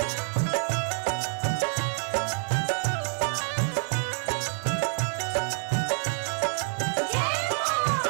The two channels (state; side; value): silent; left; 60 dB below the other